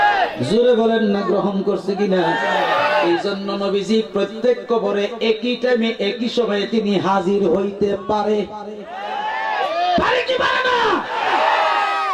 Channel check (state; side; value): identical; both; correlation 1.00